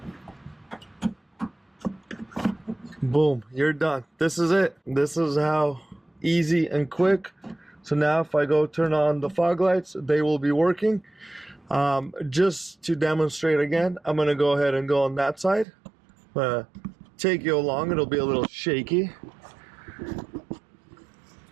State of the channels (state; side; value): drops out; left; at 15.7 s